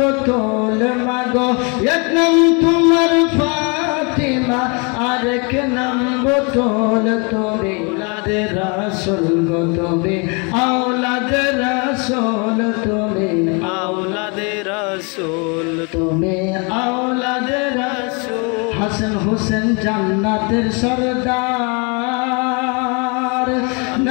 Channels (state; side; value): quieter; right; 32.9 dB